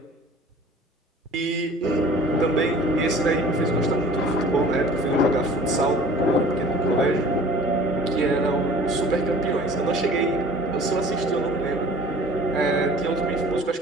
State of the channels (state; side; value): normal; both; correlation 0.47